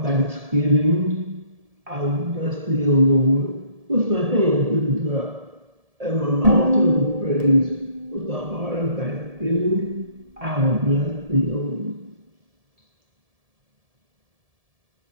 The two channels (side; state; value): left; late; 1.7 ms